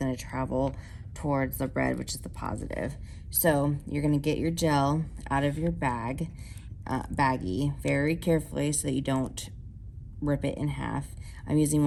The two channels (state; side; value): identical; both; correlation 1.00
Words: to travel towards the red, which is the positive. So you're going to get your gel out of your baggie very carefully so that you don't rip it in half. I'm using